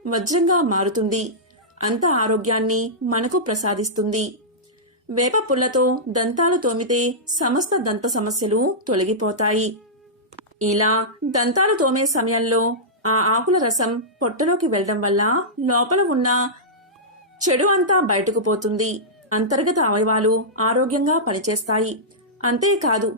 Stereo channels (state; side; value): normal; both; correlation -0.12